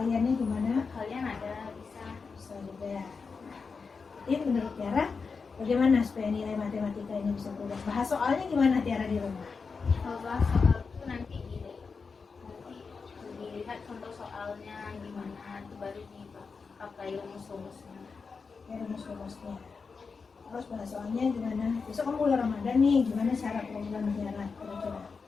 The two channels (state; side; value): quieter; right; 5.0 dB